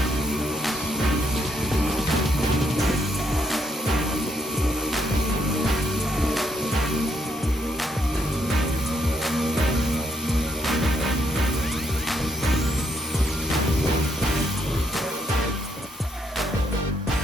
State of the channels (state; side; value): normal; both; correlation 0.75